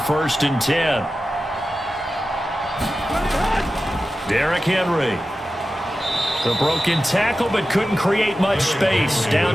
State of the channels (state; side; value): normal; both; correlation 0.93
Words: and 10. Derrick Henry. The broken tackle, but couldn't create much space.